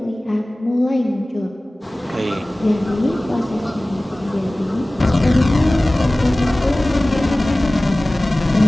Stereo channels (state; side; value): normal; both; correlation 0.98